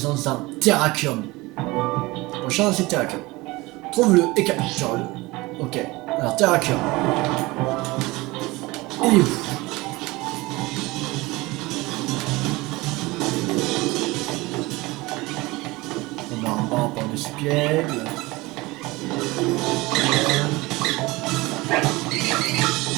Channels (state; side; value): quieter; left; 21.7 dB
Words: d'un Terrakium. Prochain c'est Terrakium. Trouve-le et capture-le. Ok. Alors Terrakium. Il est où? On a un banc par dessus pied.